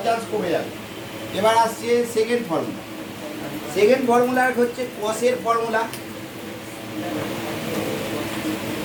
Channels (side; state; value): both; identical; correlation 1.00